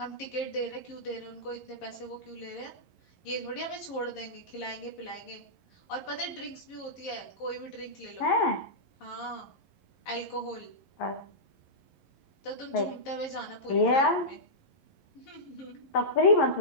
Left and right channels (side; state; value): right; late; 11 ms